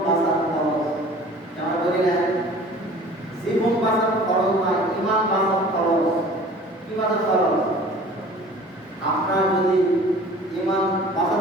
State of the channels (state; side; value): normal; both; correlation 0.46